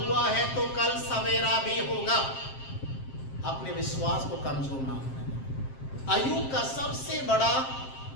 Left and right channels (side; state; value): right; late; 7.5 ms